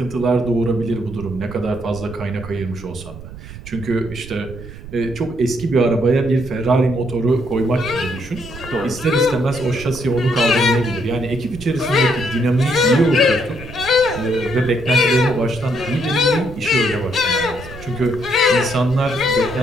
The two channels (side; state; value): right; noise; rumble, 14 dB below the sound